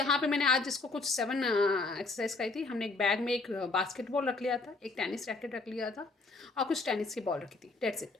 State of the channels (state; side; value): quieter; right; 3.6 dB